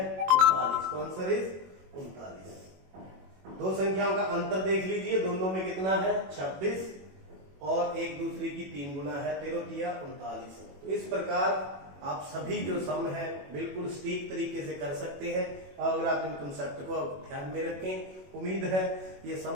39, तो आंसर इज 39। दो संख्याओं का अंतर देख लीजिए, दोनों में कितना है 26 और एक दूसरी की 3 गुना है, 13 तिया 39। तो इस प्रकार आप सभी जो सम है बिल्कुल सटीक तरीके से कर सकते हैं, अगर आप इन कंसेप्ट को ध्यान में रखें। उम्मीद है ये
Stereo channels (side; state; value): left; late; 21 ms